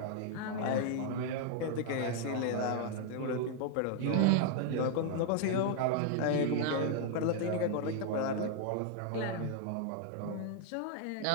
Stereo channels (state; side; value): different; both; correlation 0.00